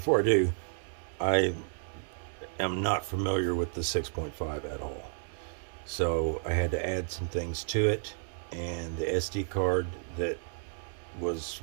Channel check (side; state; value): left; silent; 57 dB below the other